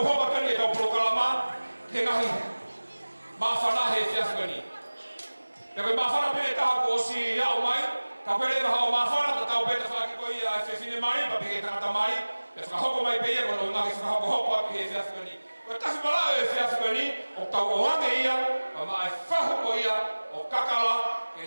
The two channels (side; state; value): both; inverted; correlation -1.00